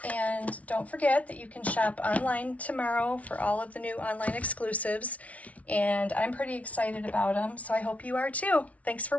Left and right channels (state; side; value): late; right; 0.067 ms